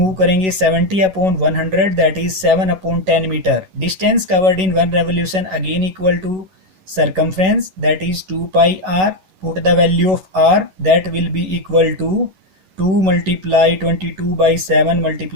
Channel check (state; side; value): late; left; 11 ms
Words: करेंगे, 70/100, that is 7/10 meter. Distance covered in 1 revolution again equal to circumference, that is 2 pi r. Put the value of r, that will be equal to 2 multiply 22 by 7